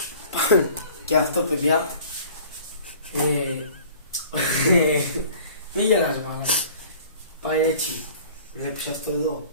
Και αυτό, παιδιά, μην γελάς μάλλον. Πάει έτσι. Βλέπεις αυτό εδώ.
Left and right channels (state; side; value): inverted; both; correlation -0.47